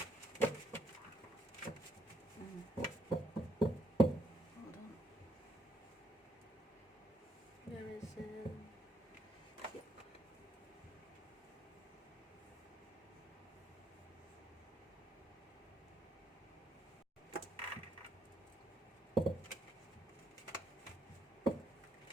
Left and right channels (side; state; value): both; normal; correlation 0.73